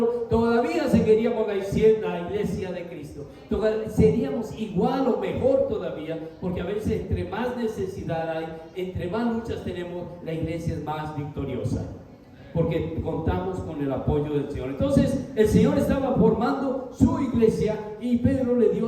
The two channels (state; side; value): identical; both; correlation 1.00